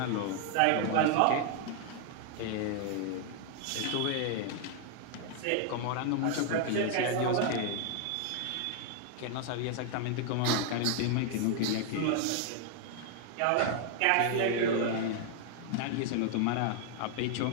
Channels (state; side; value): different; both; correlation 0.00